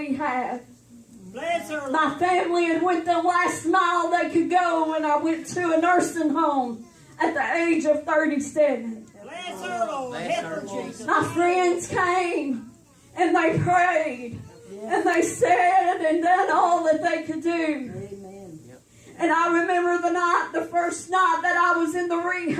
Bless her, Lord. My family had went the last mile they could go, and I went to a nursing home at the age of 37. Bless her, Lord. Help her, Jesus. My friends came and they prayed and they said and done all that they could do. And I remember the first night that I was in the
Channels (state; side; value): identical; both; correlation 1.00